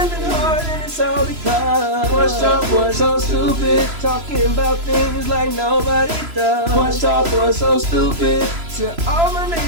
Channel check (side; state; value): left; late; 3.0 ms